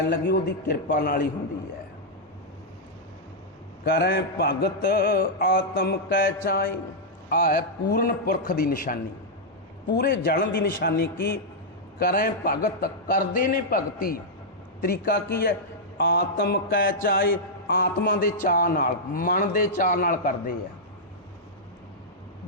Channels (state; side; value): normal; both; correlation -0.07